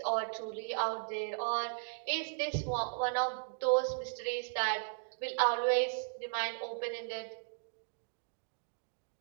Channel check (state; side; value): silent; left; digital silence